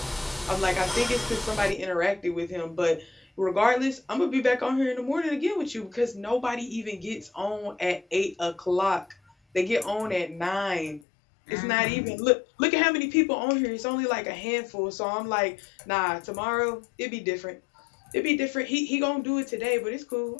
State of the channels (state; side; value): drops out; right; at 11.0 s